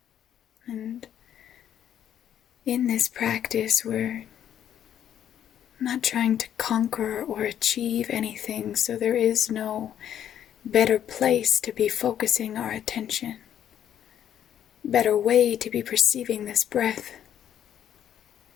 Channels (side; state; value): right; quieter; 10.1 dB